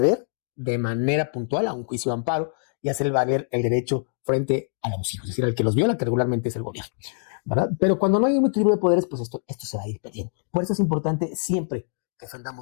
de manera puntual a un juicio de amparo y hacer valer el derecho frente al abusivo, es decir, al que los viola, que regularmente es el gobierno, ¿verdad? Pero cuando no hay un equilibrio de poderes, pues esto se va a ir perdiendo. Por eso es importante siempre que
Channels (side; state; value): right; silent; digital silence